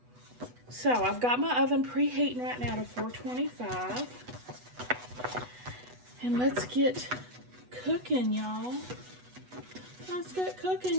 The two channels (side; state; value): left; late; 8.1 ms